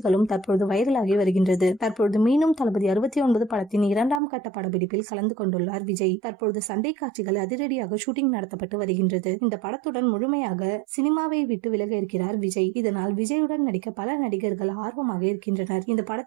தற்பொழுது வைரலாகி வருகின்றது. தற்பொழுது மீண்டும் தளபதி 69 படத்தின் 2ஆம் கட்ட படப்பிடிப்பில் கலந்து கொண்டுள்ளார் விஜய். தற்பொழுது சண்டை காட்சிகள் அதிரடியாக ஷூட்டிங் நடத்தப்பட்டு வருகின்றது. இந்த படத்துடன் முழுமையாக சினிமாவை விட்டு விலக இருக்கிறார் விஜய். இதனால் விஜயுடன் நடிக்க பல நடிகர்கள் ஆர்வமாக இருக்கின்றனர். இந்த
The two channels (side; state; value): left; drops out; at 4.2 s